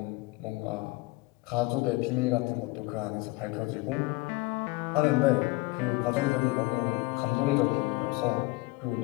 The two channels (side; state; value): right; quieter; 23.0 dB